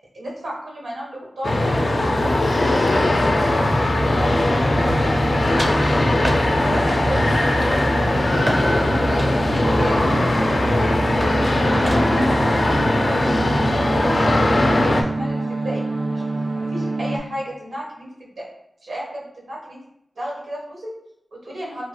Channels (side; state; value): both; normal; correlation 0.95